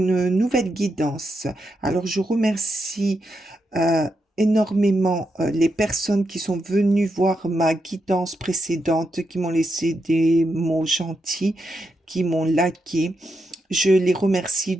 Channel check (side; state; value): both; normal; correlation 0.84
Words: nouvelle guidance. Alors, je remercie euh, énormément les personnes qui sont venues voir ma guidance précédente, qui m'ont laissé des mots gentils, qui m'ont liké. Je les remercie